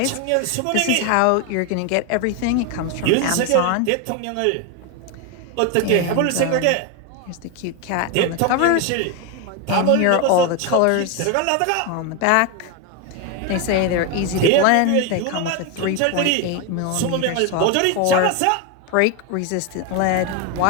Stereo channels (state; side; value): different; both; correlation 0.02